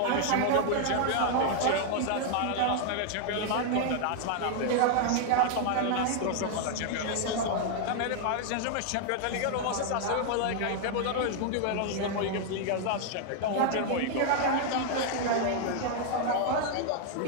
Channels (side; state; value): both; different; correlation 0.00